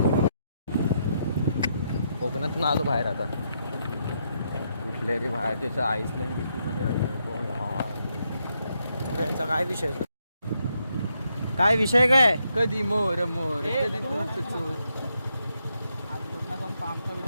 कोकणातून आलो बाहेर आता. कुठले रे बाहेर त्याचं आईसलँड बिस्टूमध्ये यांचा काय विषय काय विषय काय. कधी मोर मोर कधी तूच चोर.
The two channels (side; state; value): both; inverted; correlation -0.79